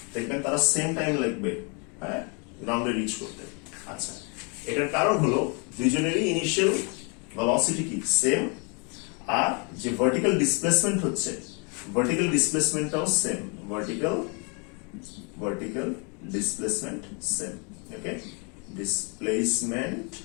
দেখবেন তারা সেম টাইম লাগবে হ্যাঁ গ্রাউন্ডে রিচ করতে। আচ্ছা, এটার কারণ হলো দুইজনেরই ইনিশিয়াল ভেলোসিটি কি সেম, আর যে ভার্টিক্যাল ডিসপ্লেসমেন্ট হচ্ছে ভার্টিক্যাল ডিসপ্লেসমেন্টটাও same, vertical displacement same. Okay, displacement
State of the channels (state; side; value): quieter; right; 34.6 dB